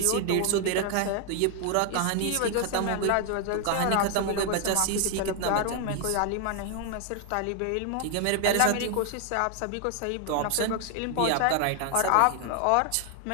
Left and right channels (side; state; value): both; different; correlation 0.00